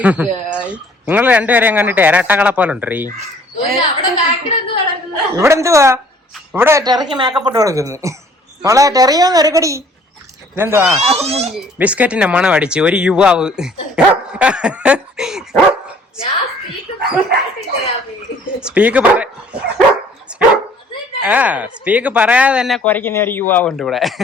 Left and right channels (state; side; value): normal; both; correlation 0.57